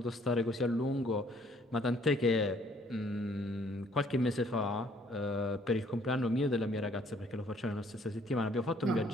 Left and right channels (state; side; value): normal; both; correlation 0.62